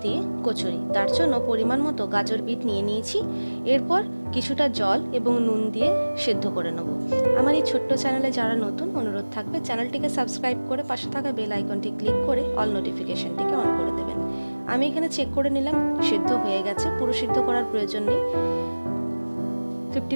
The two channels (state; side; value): inverted; both; correlation -1.00